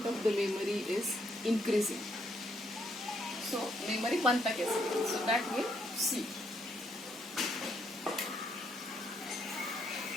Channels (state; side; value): normal; both; correlation 0.73